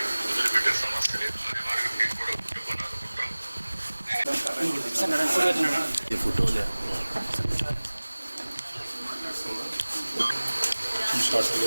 వదిలిపెట్టే సమస్య లేదు. మీకు కూడా కుటుంబాన్ని అనుకుంటాం. ఫోటోలే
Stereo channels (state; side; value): inverted; both; correlation -1.00